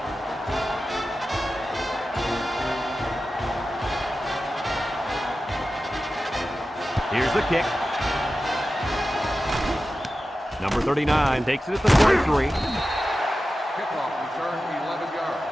Here's the kick. Number 39 takes it at the 23. Kickoff return 11 yards.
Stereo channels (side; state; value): both; normal; correlation 0.93